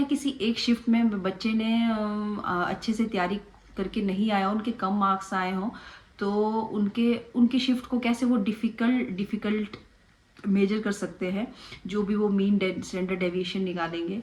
किसी एक शिफ्ट में बच्चे ने अच्छे से तैयारी करके नहीं आया, उनके कम मार्क्स आए हों, तो उनके उनकी शिफ्ट को कैसे वो डिफ़िकल्ट मेजर कर सकते हैं। जो भी वो मीन स्टैंडर्ड डेविएशन निकालेंगे,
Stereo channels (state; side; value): identical; both; correlation 1.00